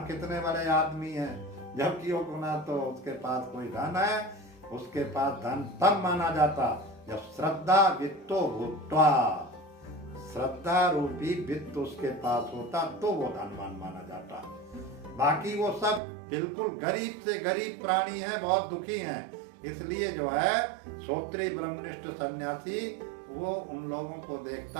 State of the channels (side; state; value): left; drops out; at 16.0 s